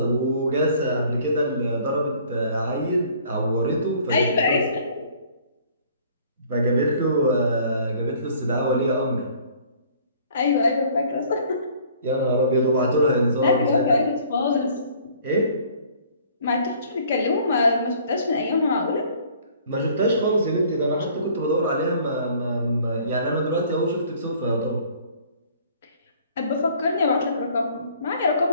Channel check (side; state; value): both; inverted; correlation -0.55